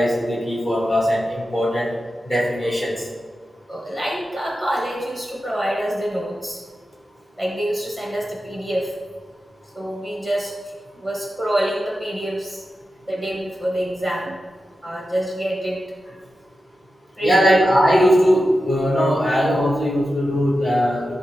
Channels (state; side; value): normal; both; correlation 0.91